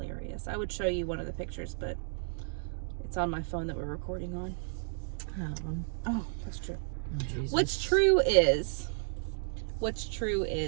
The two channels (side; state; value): left; silent; digital silence